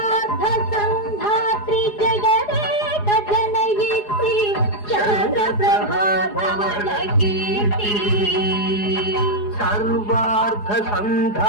संधात्री जगदेक जनयित्री चंद्रप्रभा धवल कीर्ति सर्वार्थ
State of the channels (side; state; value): right; late; 4.8 ms